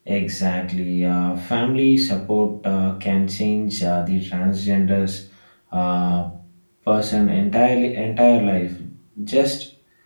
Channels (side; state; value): both; inverted; correlation -1.00